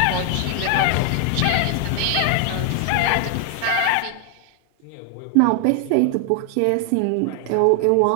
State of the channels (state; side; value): different; both; correlation 0.00